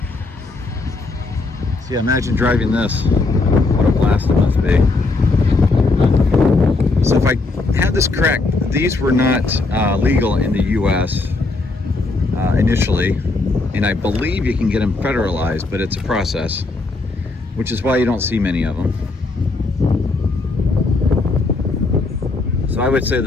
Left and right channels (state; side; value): quieter; right; 3.5 dB